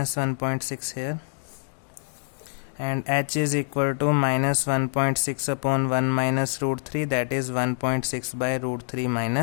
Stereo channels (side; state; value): right; silent; digital silence